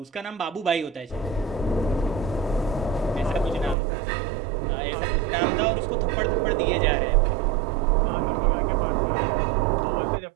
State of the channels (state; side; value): drops out; left; at 3.8 s